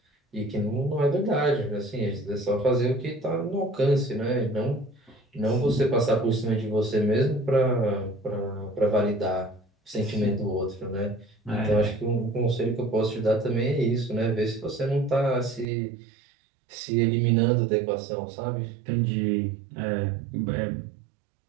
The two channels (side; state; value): left; drops out; at 15.7 s